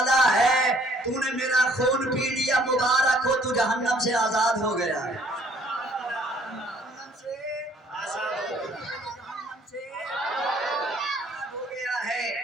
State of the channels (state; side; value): normal; both; correlation 0.60